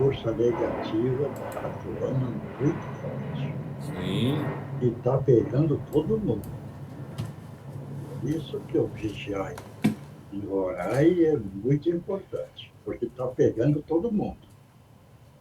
negativa está atuando muito forte Sim, e está pegando todo mundo. Isso que o vigiar e orar é muito importante, porque está pegando todo mundo.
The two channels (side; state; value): both; identical; correlation 1.00